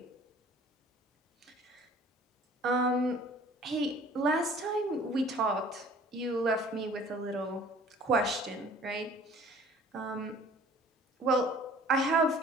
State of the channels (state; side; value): normal; both; correlation 0.50